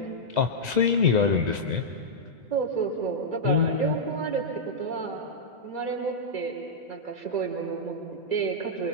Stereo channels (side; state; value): left; late; 2.0 ms